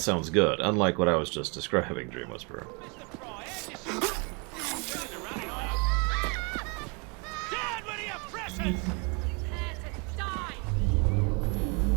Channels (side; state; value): left; quieter; 32.5 dB